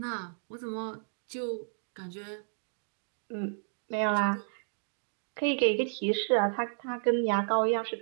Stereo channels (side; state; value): left; silent; digital silence